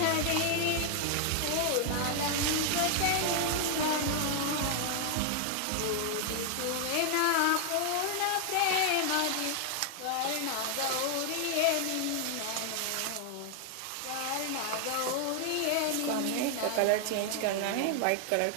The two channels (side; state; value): both; different; correlation 0.00